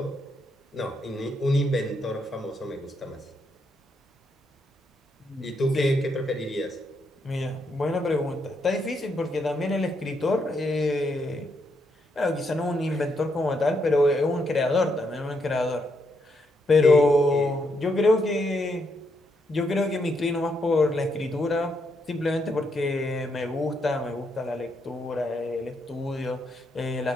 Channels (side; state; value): both; normal; correlation 0.78